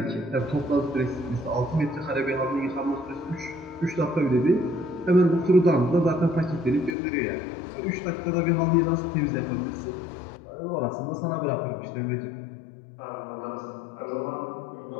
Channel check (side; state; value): right; drops out; at 7.0 s